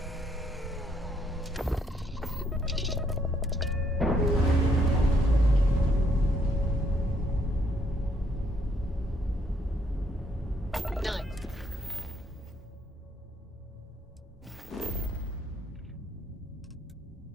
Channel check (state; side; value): normal; both; correlation 0.70